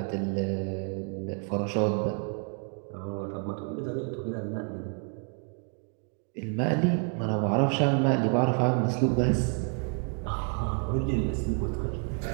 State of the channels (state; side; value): quieter; left; 39.4 dB